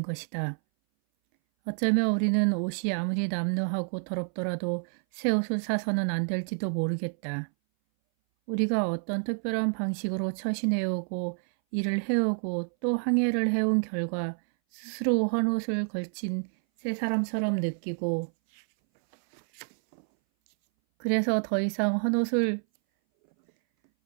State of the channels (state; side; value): silent; left; 59 dB below the other